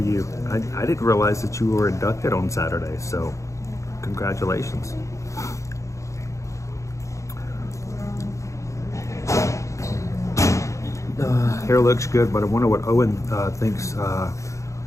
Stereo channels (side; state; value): right; late; 0.15 ms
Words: you. I didn't realize that you were inducted on Saturday, so congratulations. Hair looks good, but I wonder what Owen thinks.